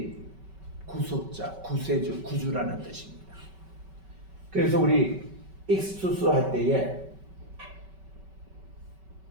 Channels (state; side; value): late; left; 5.2 ms